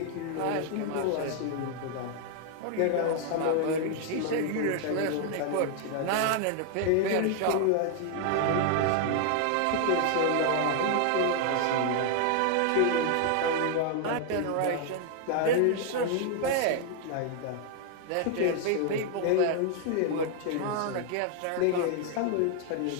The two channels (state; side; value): different; both; correlation 0.00